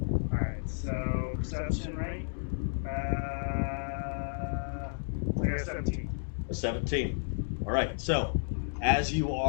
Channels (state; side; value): silent; right; digital silence